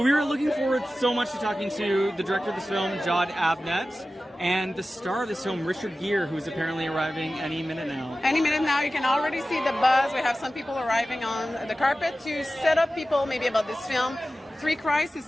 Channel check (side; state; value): both; normal; correlation 0.95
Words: were looking forward so much to talking to the director of this film, Jon Avnet, and the star of this film, Richard Gere, who is apparently arriving any minute now. Any minute now. You can already see the buzz. We have some people arriving on the carpet to set up people maybe about this film. Three Christs is